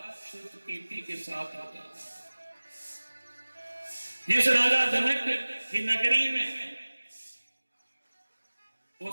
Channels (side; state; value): both; inverted; correlation -1.00